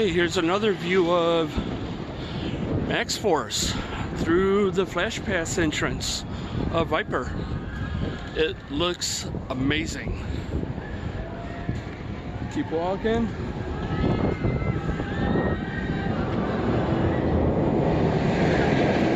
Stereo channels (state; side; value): identical; both; correlation 1.00